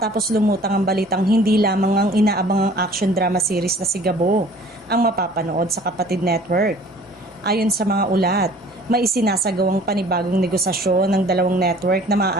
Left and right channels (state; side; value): normal; both; correlation 0.51